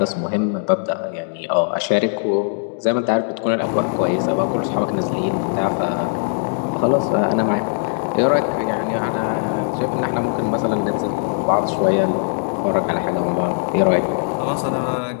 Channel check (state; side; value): silent; right; digital silence